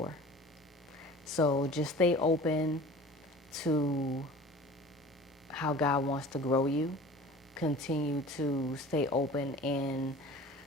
So just stay open to how God wants to grow you. Continue to stay open in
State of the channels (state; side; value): normal; both; correlation 0.42